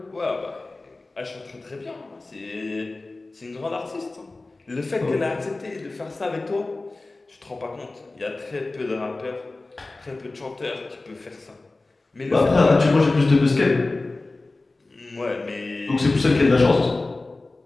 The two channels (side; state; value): right; quieter; 3.2 dB